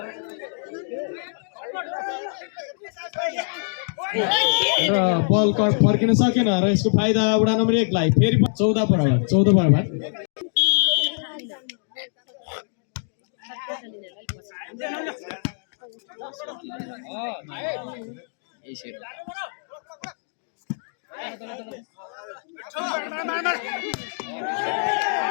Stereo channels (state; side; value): silent; right; digital silence